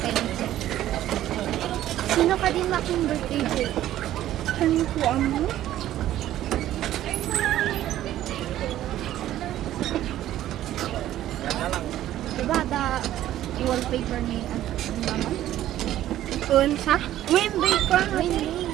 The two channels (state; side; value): quieter; left; 13.1 dB